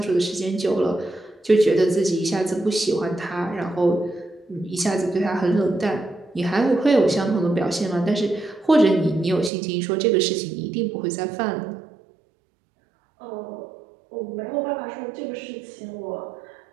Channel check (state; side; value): drops out; left; at 9.5 s